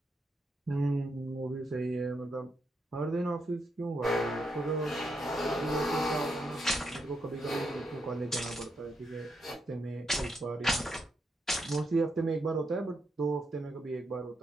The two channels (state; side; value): normal; both; correlation 0.80